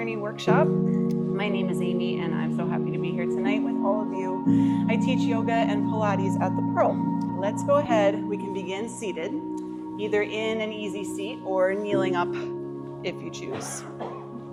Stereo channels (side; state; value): both; identical; correlation 1.00